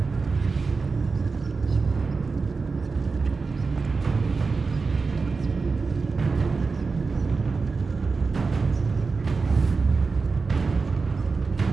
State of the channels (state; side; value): quieter; left; 4.4 dB